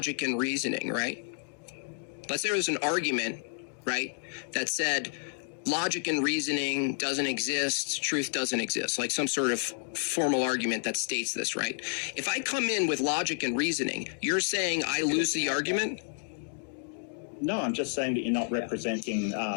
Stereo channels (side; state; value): right; silent; digital silence